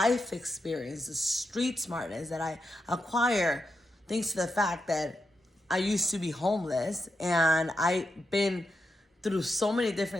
experience, the street smartness that I acquire thanks to the fact that I used to be homeless and I've been through so many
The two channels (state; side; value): normal; both; correlation 0.86